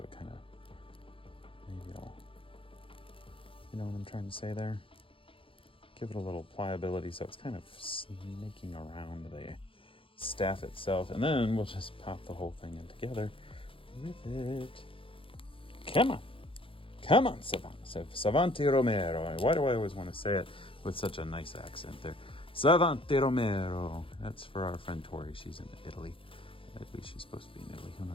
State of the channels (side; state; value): right; late; 0.26 ms